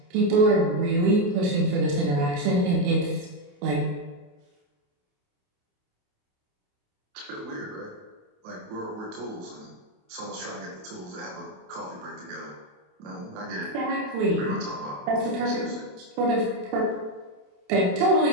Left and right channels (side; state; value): left; late; 28 ms